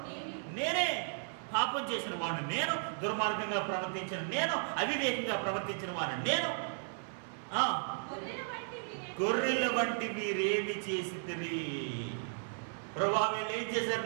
నేనే. పాపం చేసిన వాడిని నేను, దుర్మార్గంగా ప్రవర్తించిన నేను, అవివేకంగా ప్రవర్తించిన వాడిని నేను. గొర్రెల వంటి మీరేమి చేసిరి ప్రభా? వీళ్ళు ఏం చేశారు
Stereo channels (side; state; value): left; silent; 54 dB below the other